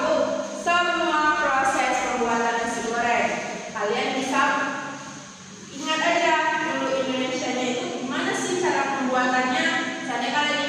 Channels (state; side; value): identical; both; correlation 1.00